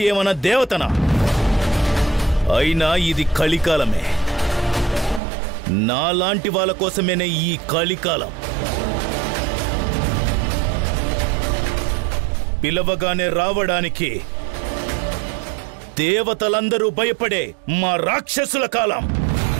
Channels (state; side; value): drops out; left; at 5.2 s